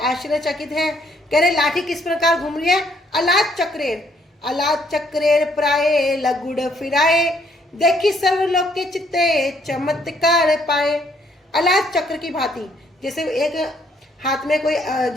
हैं। कह रहे लाठी किस प्रकार घूम रही है? अलाद चक्रेर प्राये लगुड़ फिराए, देखी सर्वलोक के चित्ते चमत्कार पाए। अलाद चक्र की भांति, जैसे एक हाथ में कोई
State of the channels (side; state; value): both; normal; correlation 0.68